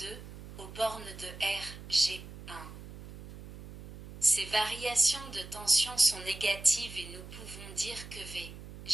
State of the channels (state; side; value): noise; right; hum, 14 dB below the sound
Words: aux bornes de RG1. Ces variations de tension sont négatives et nous pouvons dire que